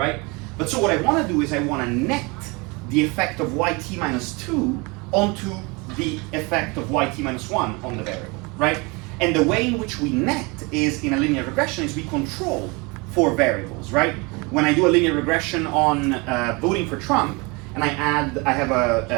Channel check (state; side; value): quieter; left; 27.7 dB